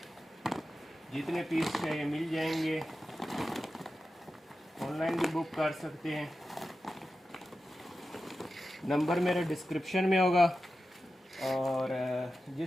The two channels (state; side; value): normal; both; correlation 0.92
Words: जितने पीस चाहिए मिल जाएंगे। ऑनलाइन भी बुक कर सकते हैं। नंबर मेरे डिस्क्रिप्शन में होगा। और